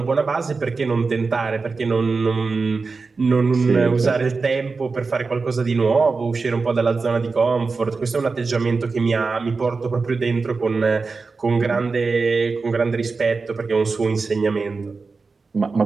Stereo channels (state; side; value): quieter; left; 4.3 dB